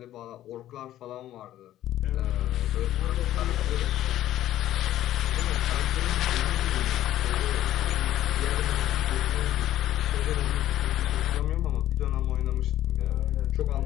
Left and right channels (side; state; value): right; quieter; 13.1 dB